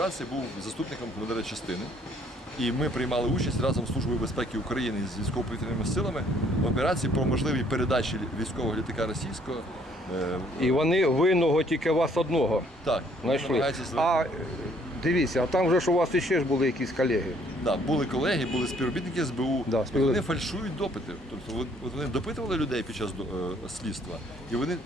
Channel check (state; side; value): normal; both; correlation 0.63